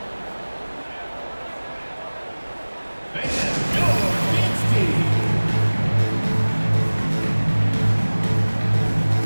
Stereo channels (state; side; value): inverted; both; correlation -1.00